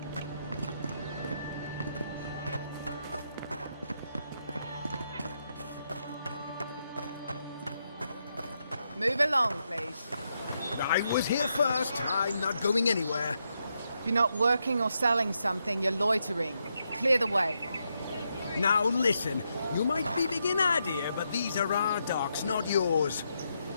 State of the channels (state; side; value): inverted; both; correlation -0.81